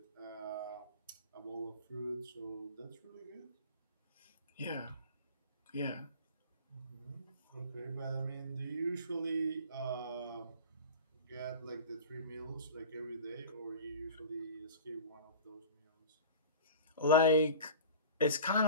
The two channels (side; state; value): both; inverted; correlation -0.37